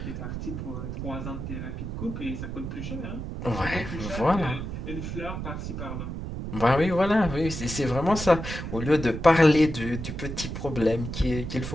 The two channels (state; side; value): noise; right; rumble, 6 dB below the sound